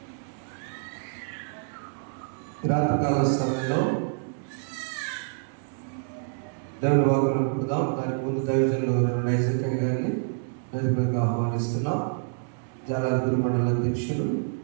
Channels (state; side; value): silent; left; digital silence